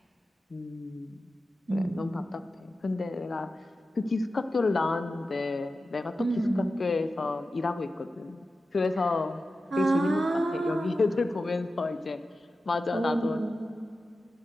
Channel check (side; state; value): both; normal; correlation 0.93